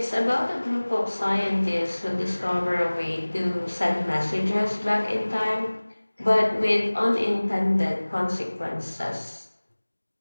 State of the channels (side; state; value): both; inverted; correlation -1.00